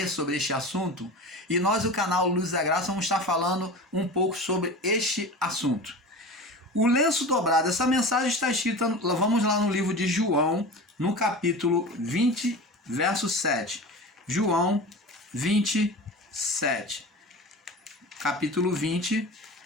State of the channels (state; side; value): normal; both; correlation 0.32